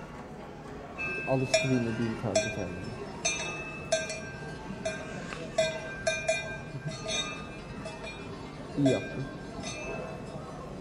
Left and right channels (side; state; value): both; identical; correlation 1.00